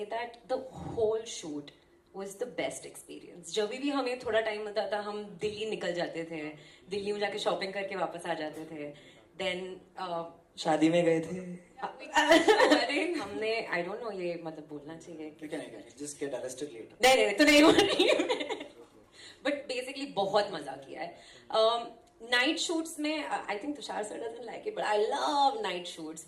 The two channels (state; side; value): identical; both; correlation 1.00